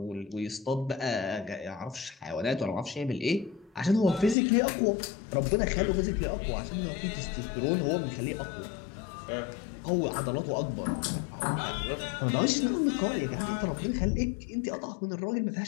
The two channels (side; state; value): right; drops out; at 4.4 s